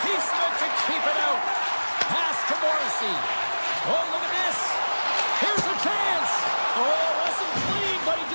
piece of it to keep it out. Pass to Morrissey. Oh, look at this. Here's a chance. Oh, wasn't clean, but he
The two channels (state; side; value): inverted; both; correlation -1.00